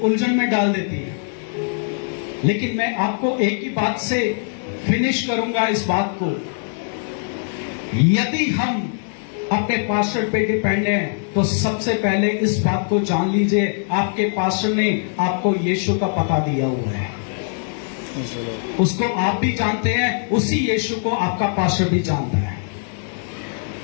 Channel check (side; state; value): right; silent; 65 dB below the other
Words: में डाल देती हैं। लेकिन मैं आपको एक ही बात से फिनिश करूंगा इस बात को। यदि हम अपने पास्टर पे डिपेंड हैं तो सबसे पहले इस बात को जान लीजिए, आपके पास्टर ने आपको यीशु का पता दिया हुआ है। उसको आप भी जानते हैं, उसी यीशु को आपका पास्टर भी जानता है।